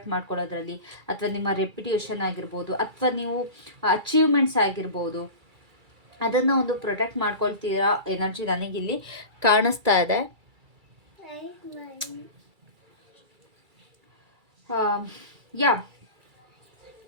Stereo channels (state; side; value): late; left; 2.3 ms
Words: ಮಾಡ್ಕೊಳ್ಳೋದ್ರಲ್ಲಿ, ಅಥವಾ ನಿಮ್ಮ ರೆಪ್ಯುಟೇಷನ್ ಆಗಿರ್ಬೋದು, ಅಥವಾ ನೀವು ಅಚೀವ್ಮೆಂಟ್ಸ್ ಆಗಿರ್ಬೋದು, ಅದನ್ನು ಒಂದು ಪ್ರೊಟೆಕ್ಟ್ ಮಾಡ್ಕೊಳ್ತೀರಾ ಎನರ್ಜಿ ನನಗಿಲ್ಲಿ ಕಾಣಿಸ್ತಾ ಇದೆ. ಯಾ,